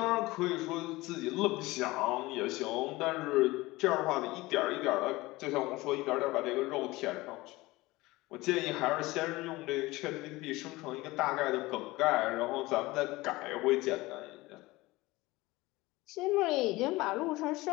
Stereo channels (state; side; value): quieter; right; 20.3 dB